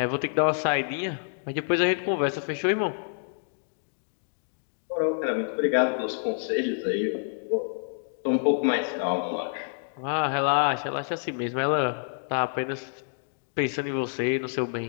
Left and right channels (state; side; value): silent; right; digital silence